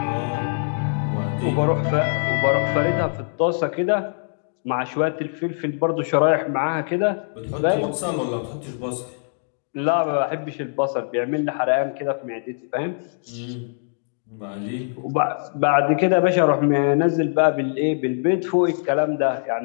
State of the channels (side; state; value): right; silent; digital silence